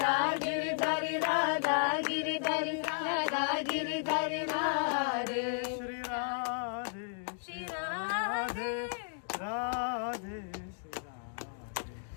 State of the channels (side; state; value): right; silent; digital silence